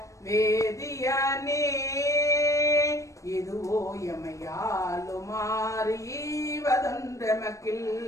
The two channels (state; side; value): late; right; 0.15 ms